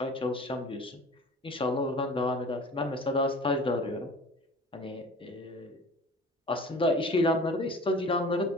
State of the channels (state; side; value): normal; both; correlation 0.43